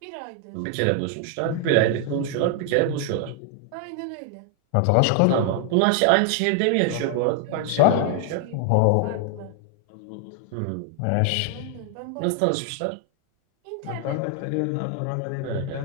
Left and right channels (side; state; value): both; different; correlation 0.00